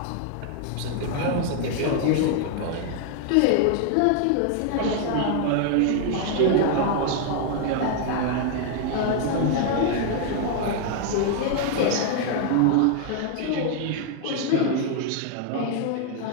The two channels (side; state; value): both; different; correlation 0.00